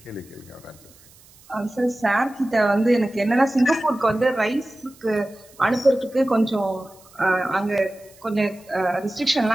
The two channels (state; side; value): noise; right; hiss, 26 dB below the sound